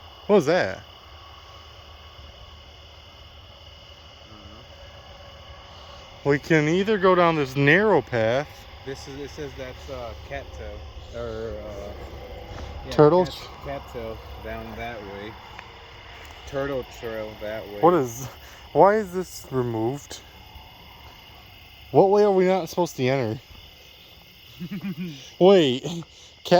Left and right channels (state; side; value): identical; both; correlation 1.00